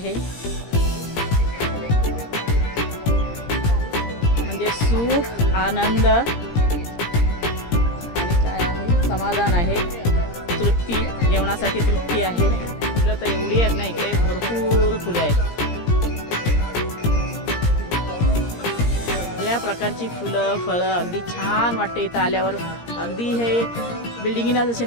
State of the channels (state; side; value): late; right; 17 ms